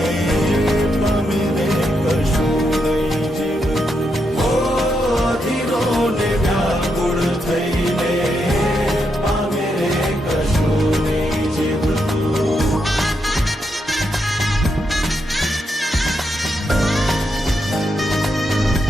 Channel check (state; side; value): normal; both; correlation 0.82